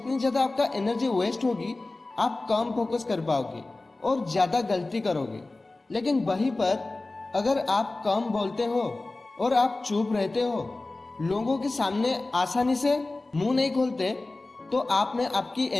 ज़्यादा आपका एनर्जी वेस्ट होगी आप कम फोकस कर पाओगे और ज़्यादा गलती करोगे। लेकिन वहीं पर अगर आप कम बोलते हो और आप चुप रहते हो, लोगों के सामने आसानी से मुंह नहीं खोलते, तो आप में आपकी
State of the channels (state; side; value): quieter; right; 3.1 dB